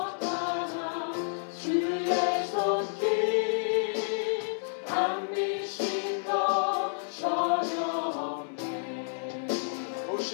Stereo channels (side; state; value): right; silent; 58 dB below the other